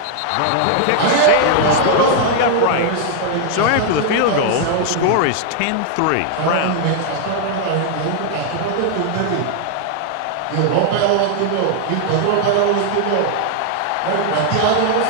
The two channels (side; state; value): both; different; correlation -0.01